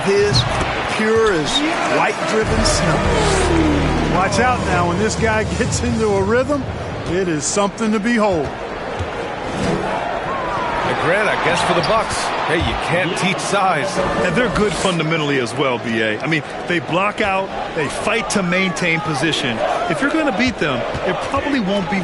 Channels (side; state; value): both; identical; correlation 1.00